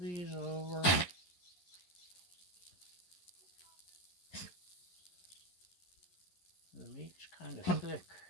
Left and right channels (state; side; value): late; right; 11 ms